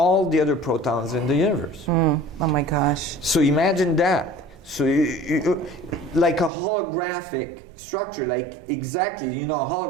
the other protons in the universe. Oh my gosh. So imagine that. So like a holographic structure, like exactly, you know, a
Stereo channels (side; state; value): left; drops out; at 6.5 s